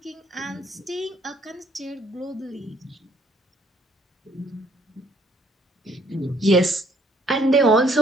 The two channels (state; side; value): normal; both; correlation 0.64